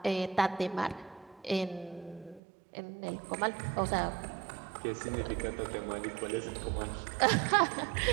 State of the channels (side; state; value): left; drops out; at 2.4 s